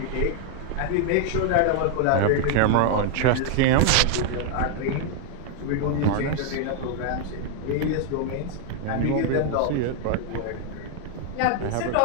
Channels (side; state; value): both; different; correlation 0.00